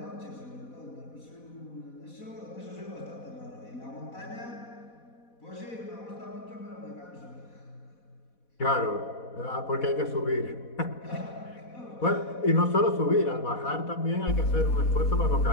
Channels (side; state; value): right; late; 4.1 ms